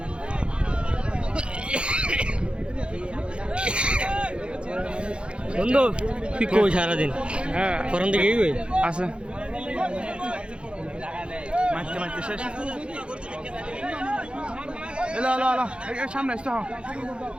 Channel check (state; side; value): late; left; 0.056 ms